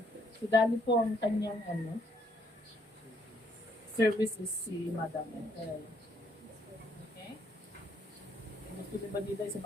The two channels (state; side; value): normal; both; correlation 0.69